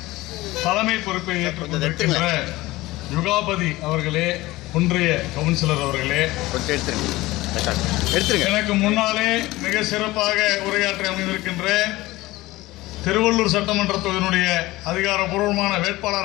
தலைமை பொறுப்பை ஏற்றுக்கொண்டிருக்கின்ற யுகாபதி அவர்களே, ஒன்றிய கவுன்சிலர் அவர்களே, எனக்கு முன்னாலே மிக சிறப்பாக உரையாற்றி அமைந்திருக்கின்ற திருவள்ளூர் சட்டமன்ற தொகுதியினுடைய அதிகாரப்பூர்வமான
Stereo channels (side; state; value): right; quieter; 18.9 dB